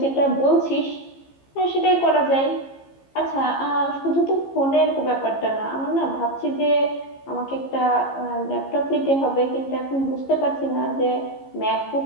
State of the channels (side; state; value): right; late; 15 ms